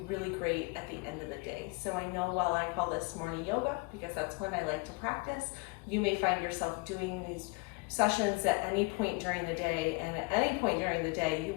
really great at the end of the day. So I know while I call this morning yoga, because that's when I like to practice, you may find yourself doing these sessions at any point during the day, and at any point during the day, you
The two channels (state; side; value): quieter; right; 27.3 dB